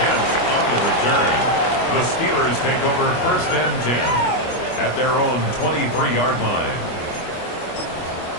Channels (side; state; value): right; late; 25 ms